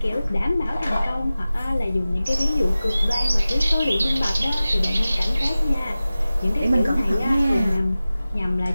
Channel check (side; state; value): both; inverted; correlation -0.96